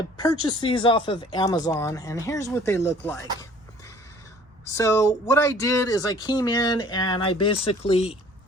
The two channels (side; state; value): both; normal; correlation 0.52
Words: purchased these off of Amazon, and here's what they look like. So what I did is I came in and I basically